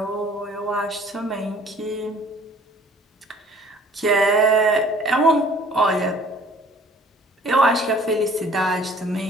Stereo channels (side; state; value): both; normal; correlation 0.54